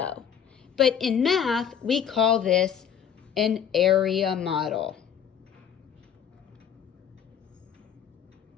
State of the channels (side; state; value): right; quieter; 8.3 dB